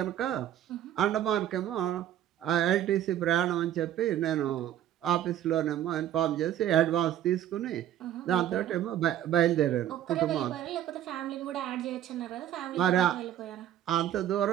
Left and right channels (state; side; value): quieter; left; 11.5 dB